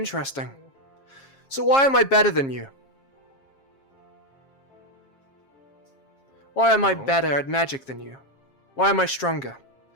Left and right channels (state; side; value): late; right; 7.4 ms